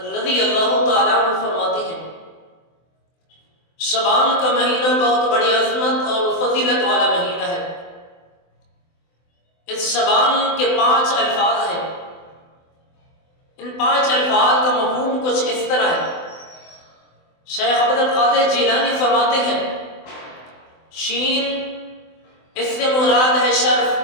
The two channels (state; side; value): late; right; 24 ms